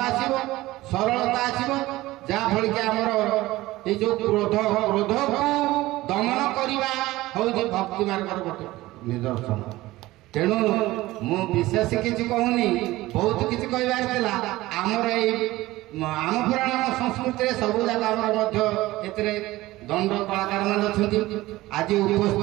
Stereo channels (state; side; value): quieter; left; 17.9 dB